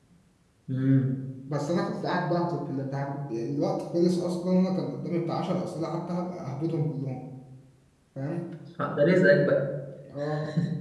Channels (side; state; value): both; identical; correlation 1.00